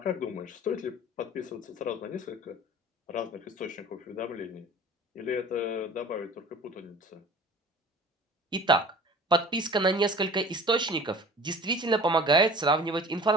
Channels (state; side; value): normal; both; correlation 0.43